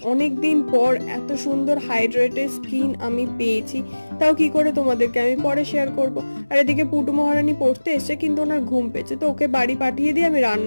অনেক দিন পর এত সুন্দর হাইড্রেটেড স্কিন আমি পেয়েছি। তাও কি করে তোমাদেরকে আমি পরে শেয়ার করব। আর এদিকে পুটু মহারানী পড়তে এসছে, কিন্তু ওনার ঘুম পেয়েছে, তো ওকে বাড়ি পাঠিয়ে দিয়ে আমি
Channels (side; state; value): both; inverted; correlation -1.00